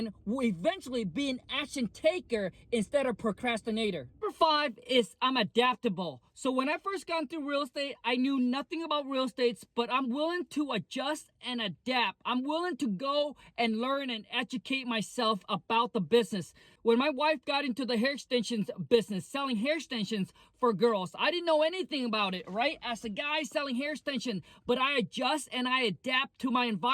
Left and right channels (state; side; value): identical; both; correlation 1.00